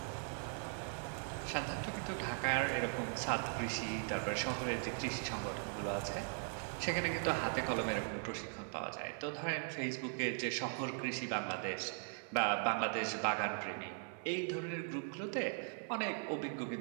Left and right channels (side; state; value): left; silent; 51 dB below the other